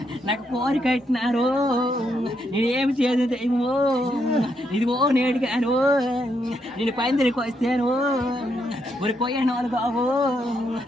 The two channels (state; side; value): normal; both; correlation 0.78